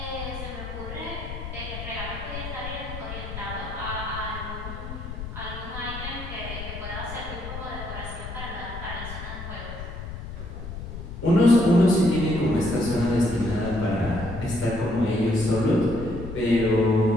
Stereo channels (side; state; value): left; noise; rumble, 9 dB below the sound